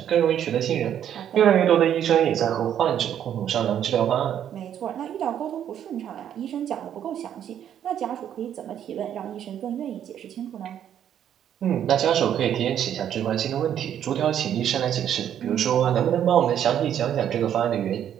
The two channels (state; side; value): quieter; left; 9.9 dB